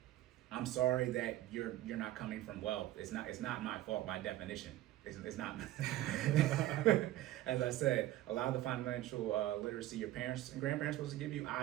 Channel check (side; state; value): left; quieter; 14.8 dB